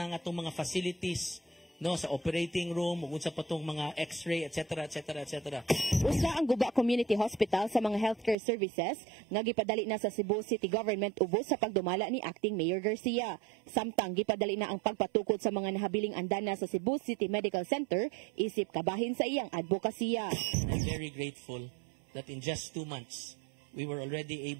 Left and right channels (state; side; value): drops out; left; at 8.3 s